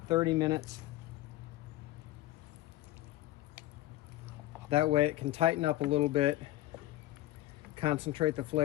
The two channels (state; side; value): quieter; right; 15.8 dB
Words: 30 minutes. That way it can tighten up a little bit, concentrate the